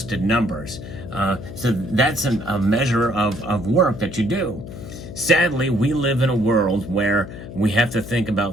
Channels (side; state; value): left; noise; hum, 12 dB below the sound